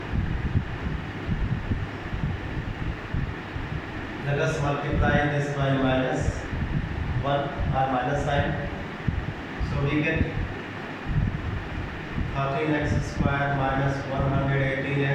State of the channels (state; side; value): identical; both; correlation 1.00